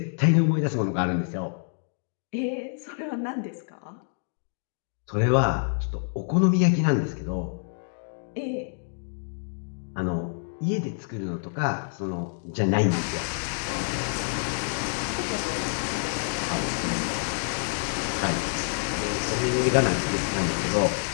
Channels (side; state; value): right; silent; digital silence